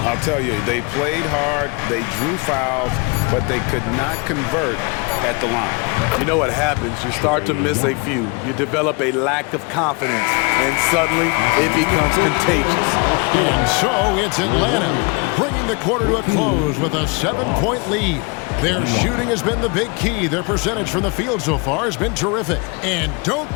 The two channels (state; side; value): quieter; right; 30.6 dB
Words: tell you, they played hard, they drew fouls, but they could not convert at the line. You know what happens? You start to miss a few. You develop a lack of confidence, and suddenly it becomes contagious. And so it's Atlanta bringing the quarter to a close with a 7-point lead. Their shooting has been the big key. Their percentage from the field so far has been terrific. And don't